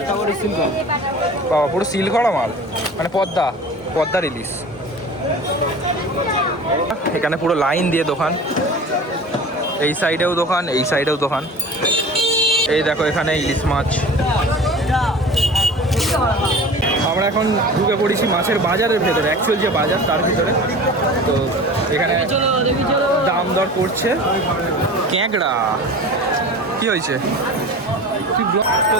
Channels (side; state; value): both; normal; correlation 0.38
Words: বাবা, পুরো সিল করা মাল, মানে পদ্মার ইলিশ। এখানে পুরো লাইন দিয়ে দোকান, এই সাইডেও দোকান, এই সাইডেও দোকান। এই দেখো এখানে ইলিশ মাছ। আমরা এখন ঢুকে পড়েছি মাছের বাজারের ভেতরে, অ্যাকচুয়াল যে বাজার তার ভিতরে। তো এখানে দাম দর করছে। ক্যাংড়া কি হয়েছে? তো